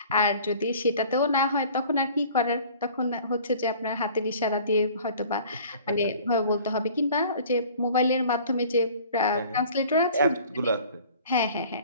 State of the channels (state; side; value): inverted; both; correlation -0.48